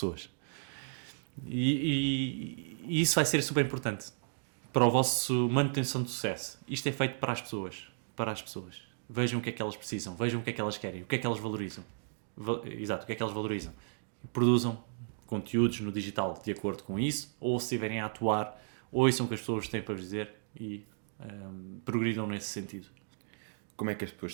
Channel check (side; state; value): left; silent; digital silence